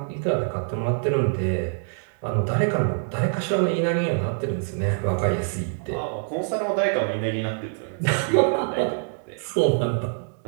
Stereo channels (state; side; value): silent; left; digital silence